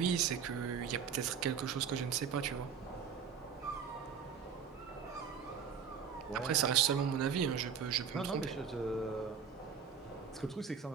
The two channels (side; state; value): left; quieter; 7.0 dB